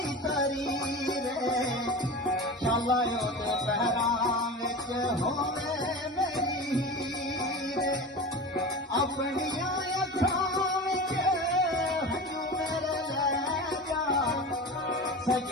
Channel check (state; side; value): normal; both; correlation 0.30